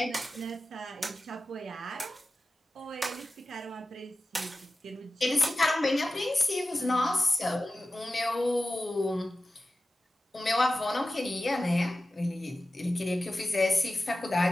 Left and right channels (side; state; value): both; normal; correlation 0.94